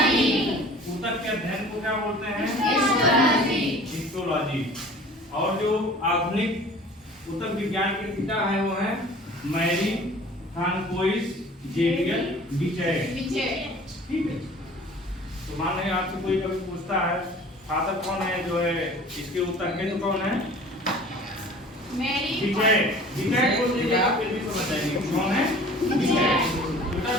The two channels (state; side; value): normal; both; correlation 0.46